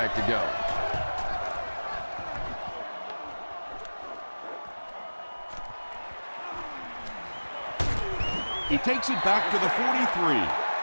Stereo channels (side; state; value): both; inverted; correlation -1.00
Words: to go. He takes it back to the